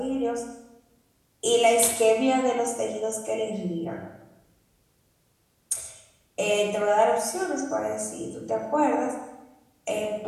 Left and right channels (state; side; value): identical; both; correlation 1.00